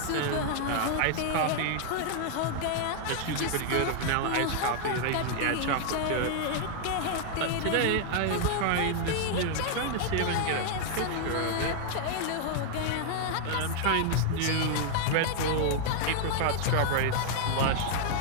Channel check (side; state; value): both; different; correlation 0.00